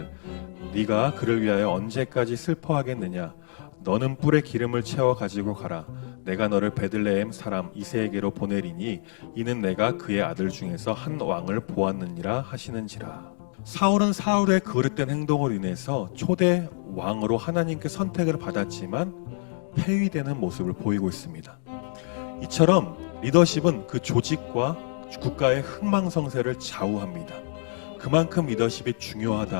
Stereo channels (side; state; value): right; silent; digital silence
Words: 네가 그를 위하여 언제까지 슬퍼하겠느냐. 너는 뿔에 기름을 채워 가지고 가라. 내가 너를 베들레헴 사람 이새에게로 보내리니 이는 내가 그의 아들 중에서 한 왕을 보았느니라 하시는지라. 사울은 사울의 그릇된 행동으로 인해서 초대 왕으로 하나님께 선택을 받았지만 폐위되는 모습을 보이고 있습니다. 이처럼 리더십은 그 조직과 국가의 흥망성쇠를 좌우합니다. 그만큼 리더십이